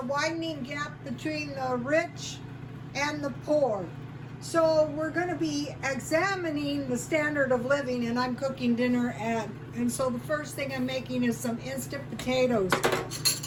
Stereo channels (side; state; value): both; identical; correlation 1.00